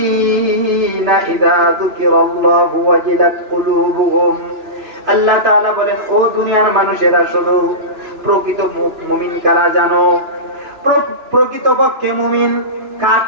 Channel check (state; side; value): late; left; 2.9 ms